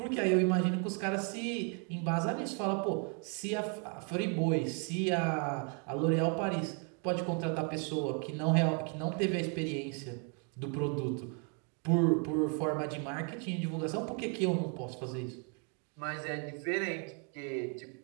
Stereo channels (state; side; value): quieter; left; 38.7 dB